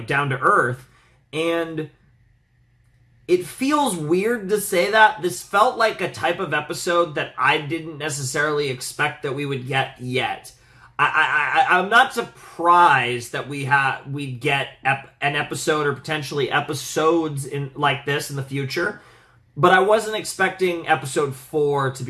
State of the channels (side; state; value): both; identical; correlation 1.00